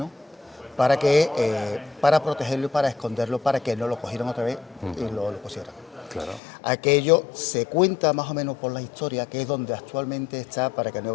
para protegerlo y para esconderlo, para que no lo cogieran otra vez y lo pusieran. Aquello se cuenta más o menos por la historia, que es donde actualmente está, para que nos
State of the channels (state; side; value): drops out; right; at 6.4 s